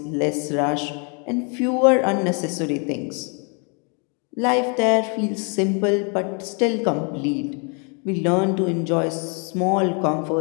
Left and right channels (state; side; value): quieter; right; 36.7 dB